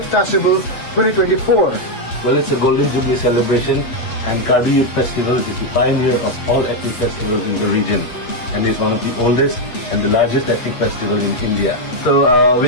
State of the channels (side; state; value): right; late; 8.2 ms